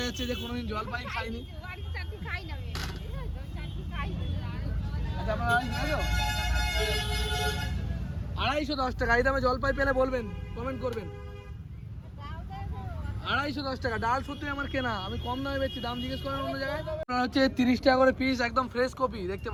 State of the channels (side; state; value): both; identical; correlation 1.00